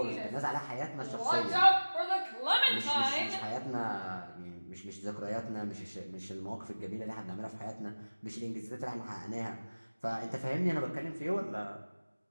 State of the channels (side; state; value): both; inverted; correlation -1.00